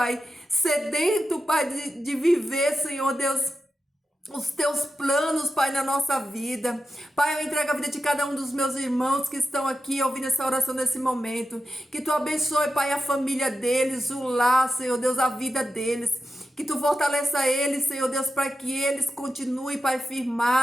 sedento, Pai, de viver, Senhor Deus, os teus planos, Pai, na nossa vida. Pai, eu entrego a vida de cada um dos meus irmãos que estão aqui ouvindo essa oração nesse momento. Que tu abençoe, Pai, a família deles, o lar, Senhor Deus, a vida deles. Que tu fortaleça eles, Senhor Deus, para que eles continuem, Pai,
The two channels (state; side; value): normal; both; correlation 0.91